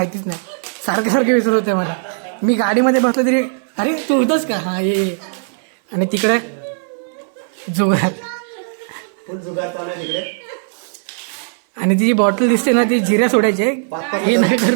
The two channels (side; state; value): left; silent; 61 dB below the other